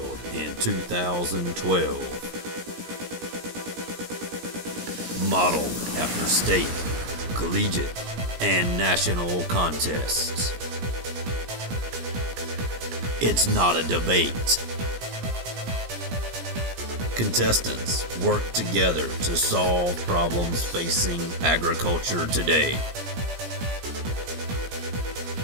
in 2012. Modeled after state, collegiate, and national contests. It's not a debate. Contestants work together to solve problems facing agriculture today.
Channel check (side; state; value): left; late; 17 ms